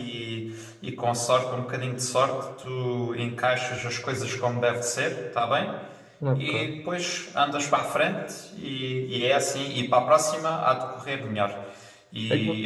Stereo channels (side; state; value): both; identical; correlation 1.00